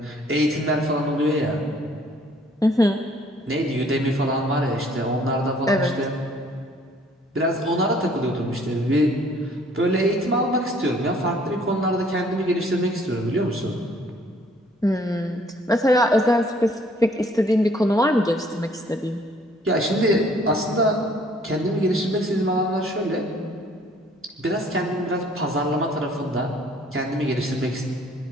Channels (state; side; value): normal; both; correlation 0.59